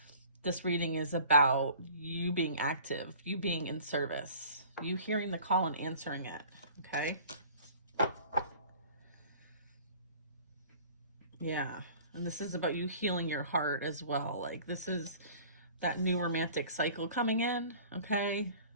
this reading is about you being active, you being in service, you hearing the call and answering it, okay? Yeah. And this is about you healing your heart as well. Like, this is that new romantic cycle coming in, okay?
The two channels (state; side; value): inverted; both; correlation -0.47